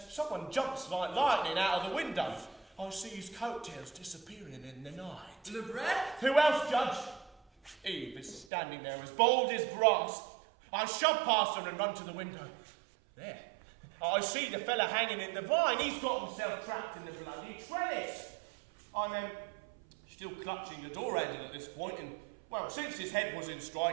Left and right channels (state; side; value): drops out; left; at 8.5 s